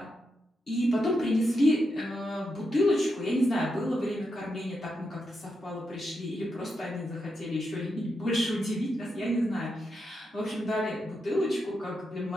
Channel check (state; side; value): normal; both; correlation 0.85